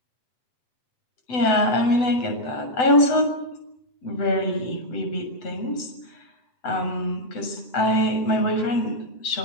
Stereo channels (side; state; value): right; late; 7.9 ms